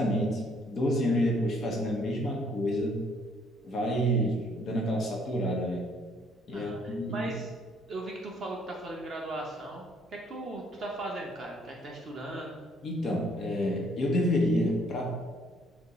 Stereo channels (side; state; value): both; normal; correlation 0.64